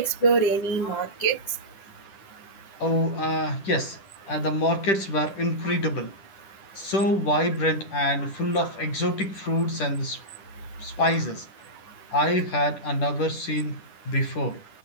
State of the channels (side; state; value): right; late; 10 ms